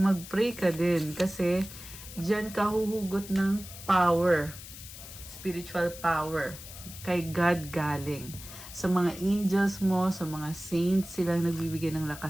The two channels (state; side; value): noise; left; hiss, 14 dB below the sound